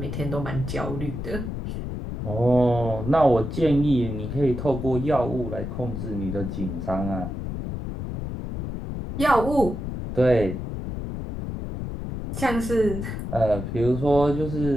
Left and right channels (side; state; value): left; noise; rumble, 6 dB below the sound